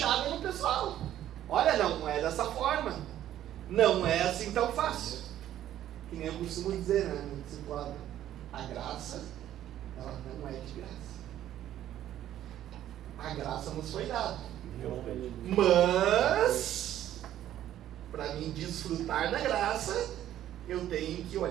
no pessoal. Olha, não é dessa forma. Não é assim tão fácil. Que nem eu costumo dizer, né? No discipulado, a graça, ela não é de graça. A graça nos foi dada. Mas, para mim desfrutar da graça, eu tenho que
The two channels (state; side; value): quieter; left; 12.1 dB